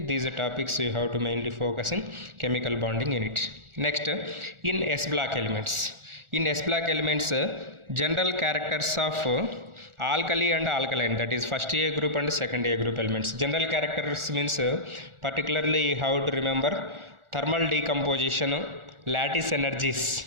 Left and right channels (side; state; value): left; late; 1.4 ms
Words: these are topics you have to mainly focus in chemical bonding unit. Next, in S block elements. In S block elements, general characters of alkali and alkaline, that is first A group and second A group elements. General characters means particularly you have to remember thermal decomposition, lattice energies,